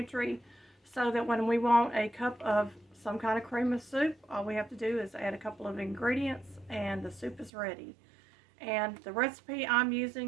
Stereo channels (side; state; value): left; drops out; at 7.5 s